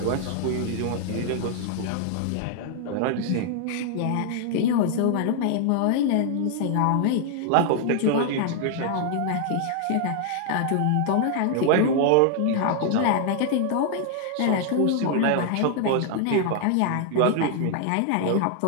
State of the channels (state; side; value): different; both; correlation 0.00